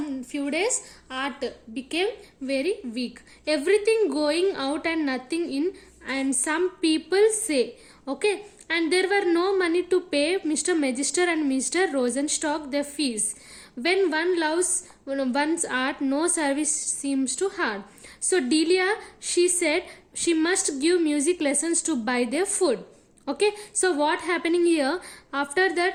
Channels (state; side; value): identical; both; correlation 1.00